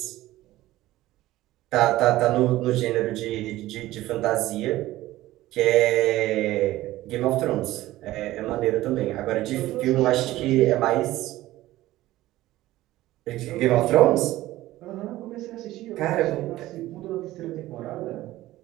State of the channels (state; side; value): quieter; left; 16.2 dB